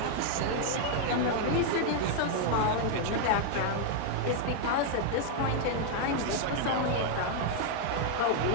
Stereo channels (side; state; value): both; different; correlation 0.00